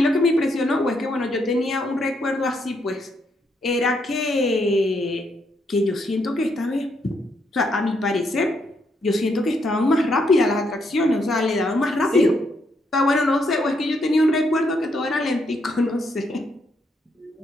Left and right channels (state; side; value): normal; both; correlation 0.76